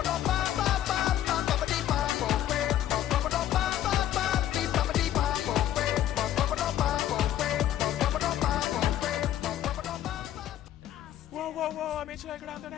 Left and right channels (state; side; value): quieter; right; 12.1 dB